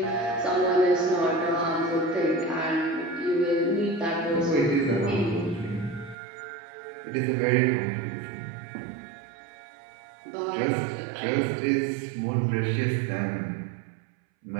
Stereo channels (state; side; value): drops out; left; at 6.2 s